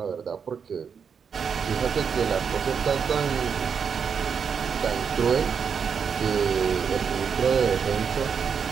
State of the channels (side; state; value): left; quieter; 6.6 dB